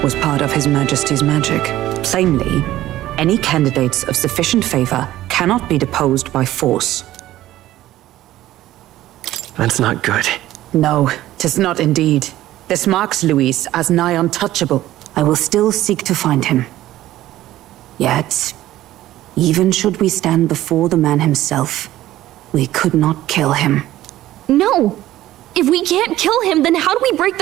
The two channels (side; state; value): left; quieter; 14.7 dB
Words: was part of His Majesty's magic. Plainly, any candidates of sufficient favor cannot be deposed by force. That's not good. No, 'tis not indeed. This marks Luis as nigh untouchable. I will still seek to find him. Yet, even should we stand before the man himself, we could not kill him. No! If we can't kill him, then how do we break